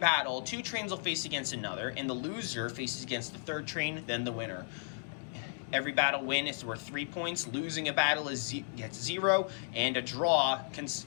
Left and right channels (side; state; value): right; silent; digital silence